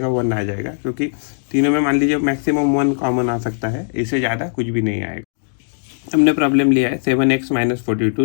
1 आ जाएगा। क्योंकि तीनों में मान लीजिए मैक्सिमम 1 कॉमन आ सकता है, इससे ज़्यादा कुछ भी नहीं आएगा। हमने प्रॉब्लम लिया है 7x माइनस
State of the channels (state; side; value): silent; right; digital silence